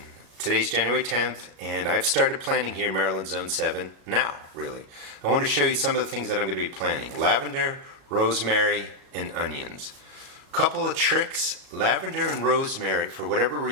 Today's January 10th and I've started planting here in Maryland Zone 7 now, really. I want to show you some of the things that I'm going to be planting. Lavender, rosemary, and onions. Couple of tricks. Lavender and rosemary, for whatever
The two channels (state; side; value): late; left; 37 ms